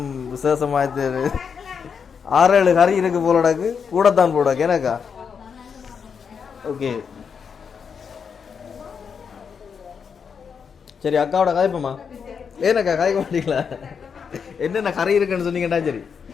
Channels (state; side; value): quieter; right; 6.5 dB